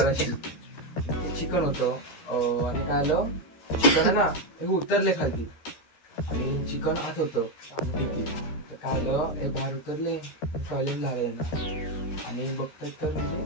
चिकन होतं. आणि काय आलं, चिकन आहे ना हे उतरले खाली आणि चिकन आत होतं डिक्कीत. तर काय आलं, हे बाहेर उतरले, टॉयलेट झालंय ना, आणि बघतात तर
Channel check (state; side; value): late; right; 13 ms